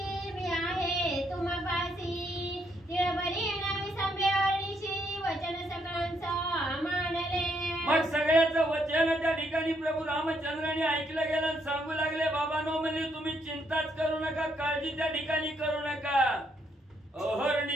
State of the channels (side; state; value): both; normal; correlation 0.74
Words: मी आहे तुम्हापासी तिळबरी नवी संभेवणीशी वचन सकळांचा मानले. मग सगळ्याचं वचन त्या ठिकाणी प्रभू रामचंद्राने ऐकलं गेलं आणि सांगू लागले बाबांनो म्हणजे तुम्ही चिंताच करू नका काळजी त्या ठिकाणी करू नका.